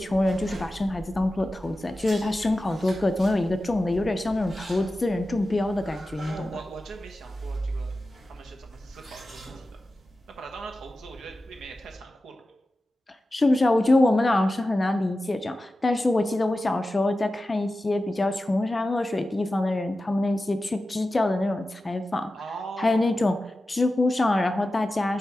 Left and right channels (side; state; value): both; normal; correlation 0.94